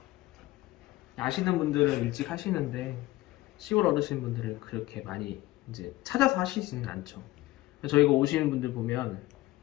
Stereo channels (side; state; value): right; quieter; 17.7 dB